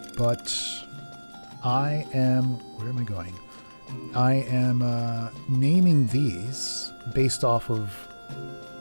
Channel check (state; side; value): inverted; both; correlation -1.00